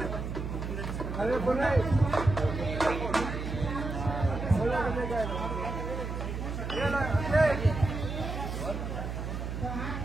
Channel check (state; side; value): noise; right; hum, 4 dB below the sound